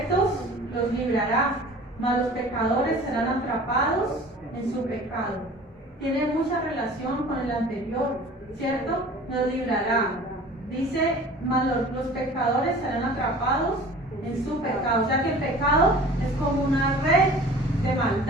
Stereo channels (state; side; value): normal; both; correlation 0.44